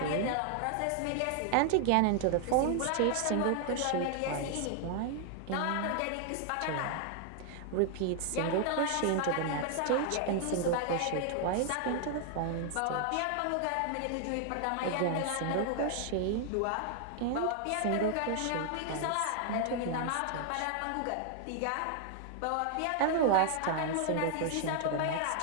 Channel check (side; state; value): both; different; correlation 0.00